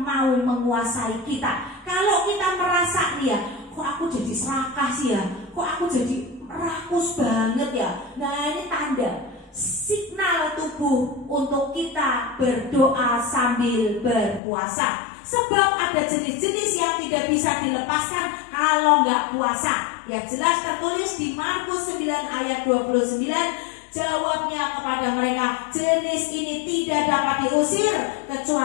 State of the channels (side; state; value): right; drops out; at 14.4 s